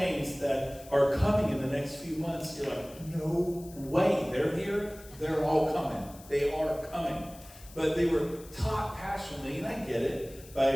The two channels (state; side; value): noise; left; hiss, 20 dB below the sound